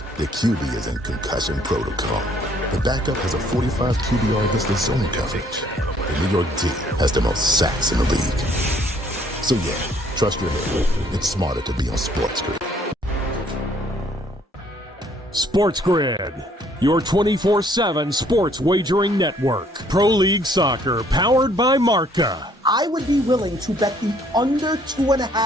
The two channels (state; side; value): normal; both; correlation 0.63